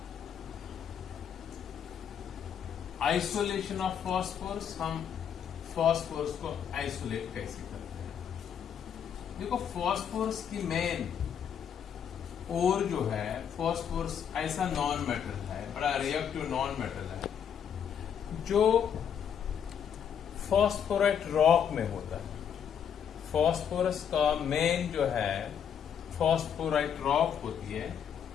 Isolation of phosphorus. हम फॉस्फोरस को आइसोलेट कैसे करते हैं? देखो, फॉस्फोरस की मेन और जो है, फॉस्फोरस ऐसा नॉन मेटल है, बड़ा रिएक्टिव नॉन मेटल है, जो फॉस्फोराइट रॉक में होता है. फॉस्फोरस का मेन जो है फॉस्फोराइट रॉक होती है,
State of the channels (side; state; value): right; quieter; 8.2 dB